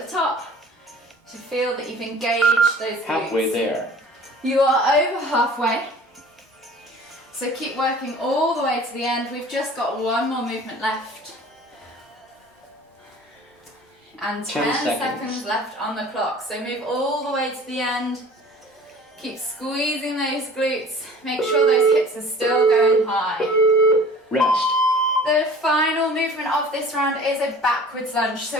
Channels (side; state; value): both; normal; correlation 0.46